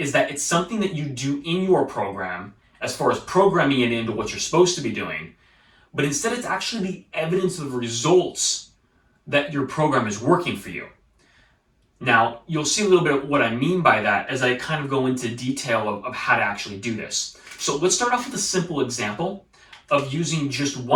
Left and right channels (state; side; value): identical; both; correlation 1.00